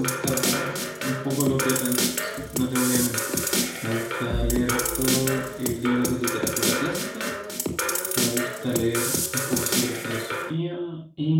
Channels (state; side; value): identical; both; correlation 1.00